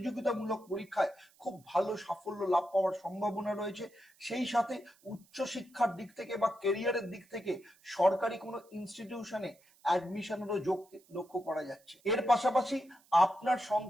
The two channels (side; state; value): right; noise; hiss, 30 dB below the sound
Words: পরীক্ষায় খুব ভালো সাফল্য লাভ পাওয়ার সম্ভাবনা রয়েছে। সেই সাথে উচ্চশিক্ষার দিক থেকে বা কেরিয়ারের দিক থেকে সরকারি কোনো ইনস্টিটিউশনে অ্যাডমিশনেরও যোগ লক্ষ্য করা যাচ্ছে। এর পাশাপাশি আপনার